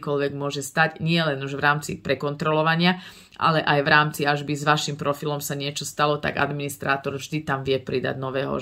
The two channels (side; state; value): both; identical; correlation 1.00